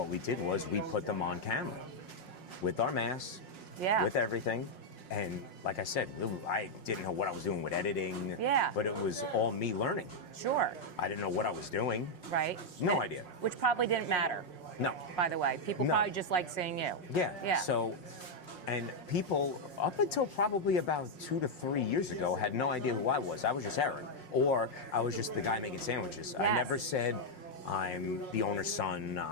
we did was we put them on camera with our masks, Yeah. with everything. And like I said, I didn't know what I was doing with editing, Yeah. but it was all me learning. Sure. I didn't know what I was doing. Right. No idea. Which probably didn't matter, No. by the way. People No. probably just like seeing you. Yeah. Yeah. So, and people up until probably about 2 to 3 years ago had no idea who I was. I was just Eric, or I was just the guy making sandwiches. I Yes. never said I'm the owner's son.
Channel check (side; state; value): right; late; 5.5 ms